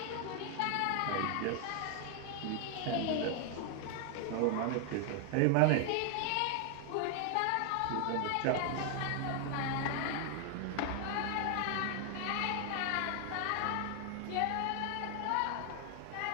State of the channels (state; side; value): different; both; correlation 0.00